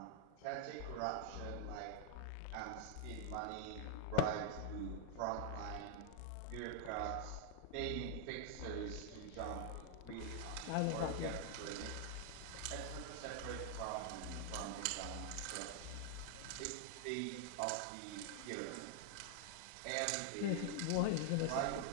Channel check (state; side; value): different; both; correlation 0.00